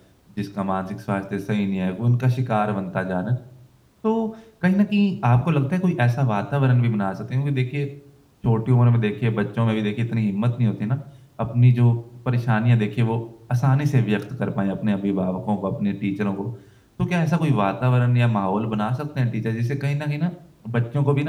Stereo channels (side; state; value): both; identical; correlation 1.00